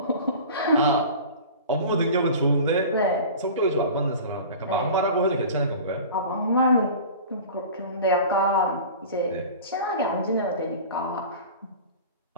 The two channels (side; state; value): both; inverted; correlation -0.37